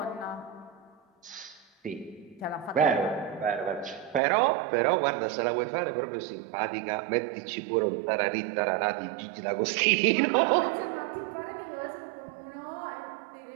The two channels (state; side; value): drops out; left; at 4.2 s